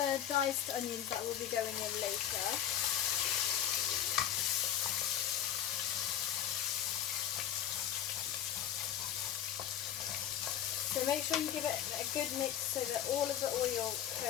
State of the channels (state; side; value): quieter; right; 10.5 dB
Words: diced onions that will be going in later. So make sure you give it a good mix so that all of the oil